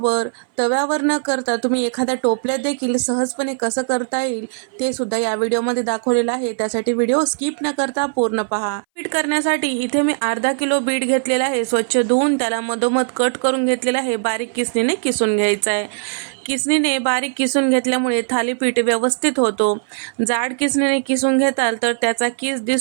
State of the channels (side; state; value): left; silent; 62 dB below the other